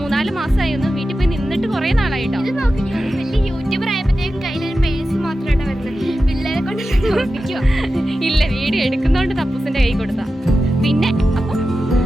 മാസമായി ഒന്ന് വീട്ടിൽ പോയി നിന്നിട്ട് കുറേ നാളായിട്ടോ. ഇത് നോക്കി വലിയ യൂട്യൂബർ ആയപ്പോഴത്തേക്കും കയ്യിലൊരു പേഴ്സ് മാത്രമായിട്ട് വരുന്നത്. പിള്ളേരെ കൊണ്ട് ഓർപ്പിക്കുക. ഇല്ല, വീഡിയോ എടുക്കുന്നതുകൊണ്ട് തപ്പൂസിൻ്റെ കൈ കൊടുത്താ. പിന്നെ അപ്പം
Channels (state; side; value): normal; both; correlation 0.92